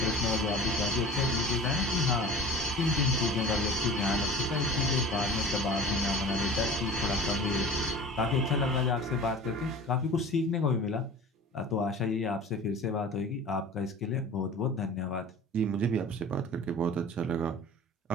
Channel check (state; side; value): normal; both; correlation 0.39